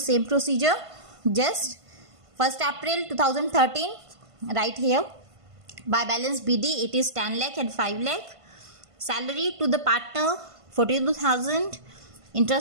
procedure. Just 1st April 2013, right here, by balance BD, it is 10 lakh and 5 lakh. Salary to the partner 42,000.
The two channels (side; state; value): left; late; 1.5 ms